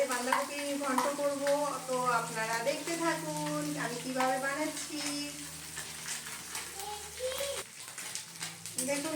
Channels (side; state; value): both; identical; correlation 1.00